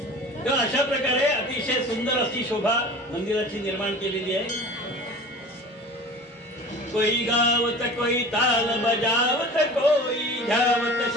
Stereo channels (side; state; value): both; normal; correlation 0.39